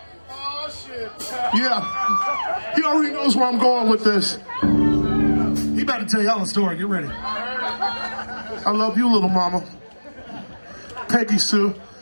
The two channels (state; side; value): inverted; both; correlation -1.00